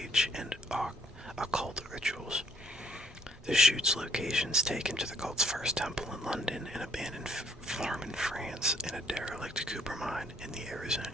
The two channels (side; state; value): both; normal; correlation 0.65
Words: and occult rituals. The shoot's locations taken to the cult's first temple in London, an abandoned farm in France, and a derelict copper mine in the